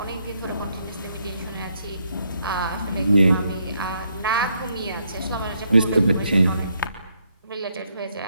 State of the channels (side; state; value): both; inverted; correlation -0.75